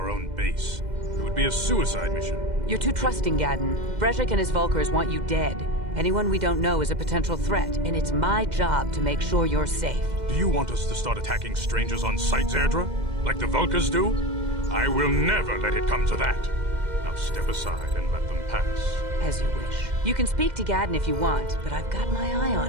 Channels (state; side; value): late; left; 2.1 ms